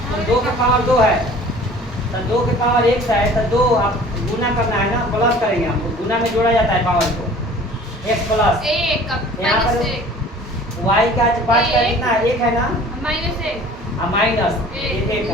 2 का पावर 2 है तो 2 के पावर 1 है तो 2 आप गुना करना है ना, प्लस करेंगे हमको, गुना में जोड़ा जाता है पावर को। x प्लस यहाँ पर y का 5 का कितना है? 1 है ना? माइनस 1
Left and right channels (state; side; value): normal; both; correlation 0.47